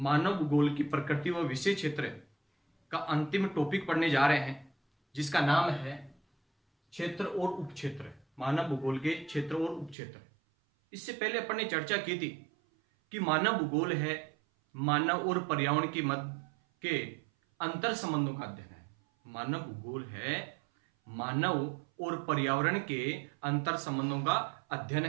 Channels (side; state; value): left; drops out; at 10.0 s